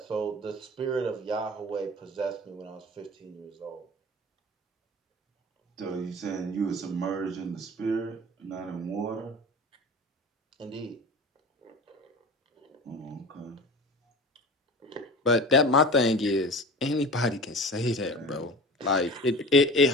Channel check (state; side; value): normal; both; correlation 0.36